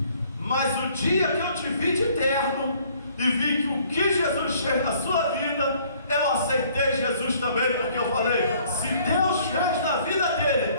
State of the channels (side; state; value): both; inverted; correlation -0.59